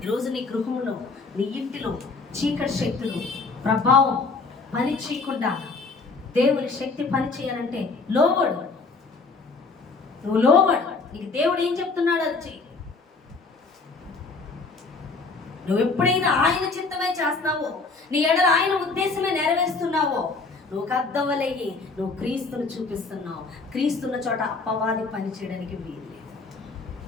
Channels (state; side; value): quieter; right; 4.1 dB